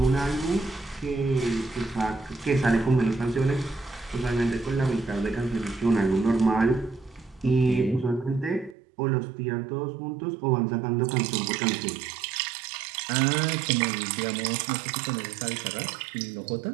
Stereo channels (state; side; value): drops out; left; at 8.8 s